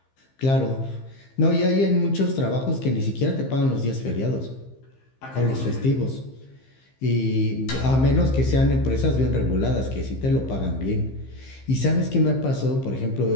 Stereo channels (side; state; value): right; late; 15 ms